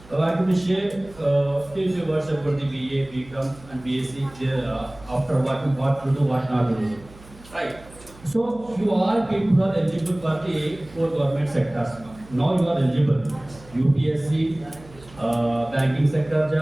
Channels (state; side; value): noise; right; hum, 22 dB below the sound